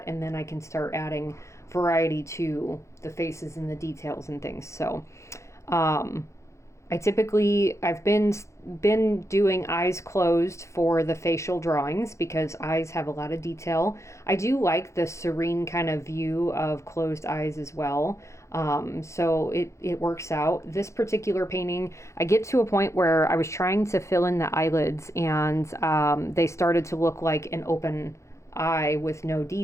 and then I can start adding variety to the faces and the details and things. So I've been doing eyes closed for the facial drawings because eyes have a lot of detail. I do like the serene kind of view of closed eyes as well. So it works out. This particular painting, I get to a point where I was trying to fill in the eyelids, and they started to look like an open eye with no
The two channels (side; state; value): right; late; 0.14 ms